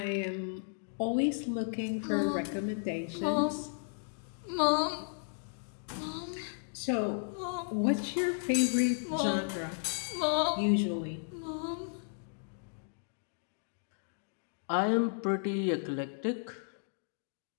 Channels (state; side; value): silent; right; digital silence